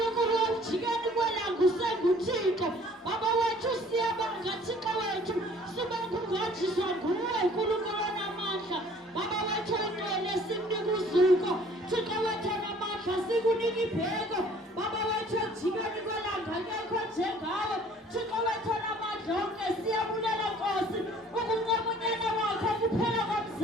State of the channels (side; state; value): both; normal; correlation 0.54